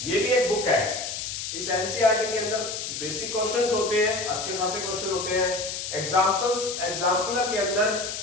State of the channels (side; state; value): left; noise; hiss, 5 dB below the sound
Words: ये भी एक बुक है। इस एनसीईआरटी के अंदर बेसिक क्वेश्चंस होते हैं, अच्छे खासे क्वेश्चन होते हैं। एग्जाम्पलर के अंदर